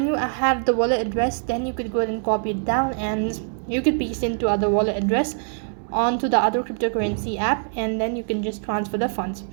you have the wallet address, then you could go ahead and copy it down, and you could paste into other wallet address onto the other cryptocurrency app, and then you can just transfer the funds.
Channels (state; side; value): silent; left; 63 dB below the other